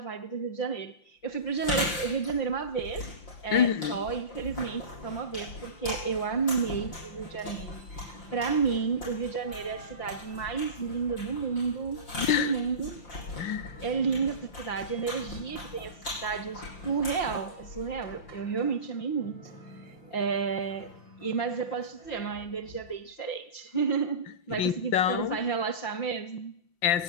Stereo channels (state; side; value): late; right; 5.7 ms